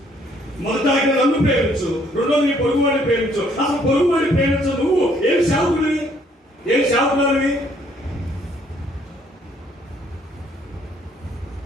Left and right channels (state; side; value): normal; both; correlation 0.65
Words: మొదటి ఆజ్ఞ నన్ను ప్రేమించు, రెండో నీ పొరుగు వాడిని ప్రేమించు. అసలు పొరుగు వాడిని ప్రేమించు. నువ్వు ఏం సేవకుడివి? ఏం సేవకుడివి?